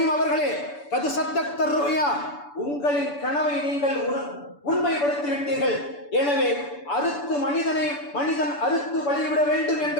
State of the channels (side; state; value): right; late; 6.9 ms